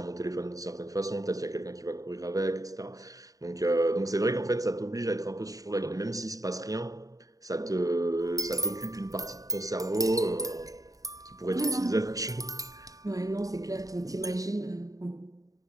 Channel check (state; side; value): late; left; 0.17 ms